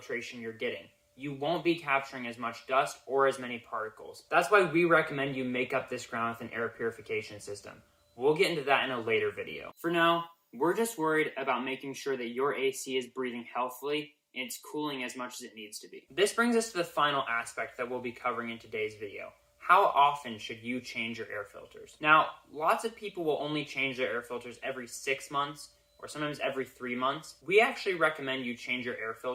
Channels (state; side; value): identical; both; correlation 1.00